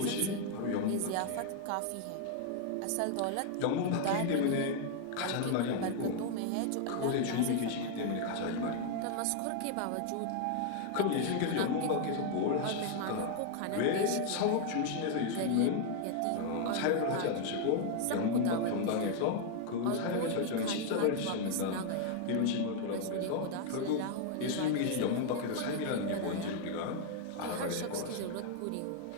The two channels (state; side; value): different; both; correlation 0.00